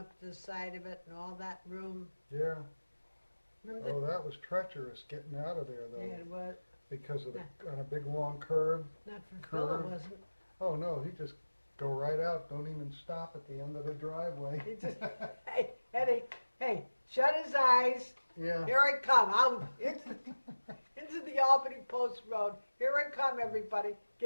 to the side of it and all that room? Yeah. Remember Oh, that was treacherous getting out of there the, though, yeah, it was, because of on a big long curve. not for Phil, it Curve. wasn't. Oh no, he just go right out. Don't even stop at the end of the driveway. He just, hey, Eddie, hey, shut his eyes. Yeah. Here I come. I'm into the Albany Post Road. Here I come, everybody.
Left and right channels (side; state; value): both; inverted; correlation -1.00